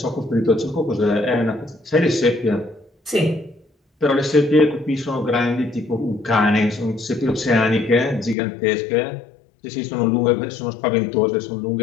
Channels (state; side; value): drops out; right; at 8.3 s